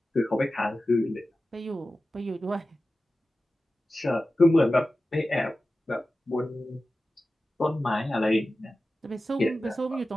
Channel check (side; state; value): both; normal; correlation 0.94